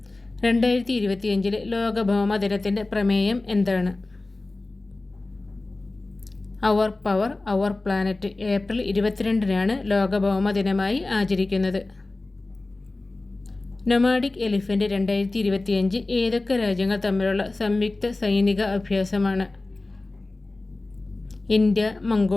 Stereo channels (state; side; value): quieter; right; 3.1 dB